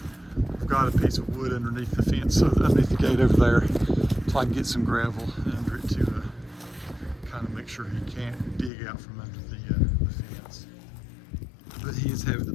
I've got a piece of wood underneath the fence, so underneath the gate over there, so I can get some gravel under it to kind of make sure he can't dig out from under the fence. But he is having the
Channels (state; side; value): drops out; right; at 8.7 s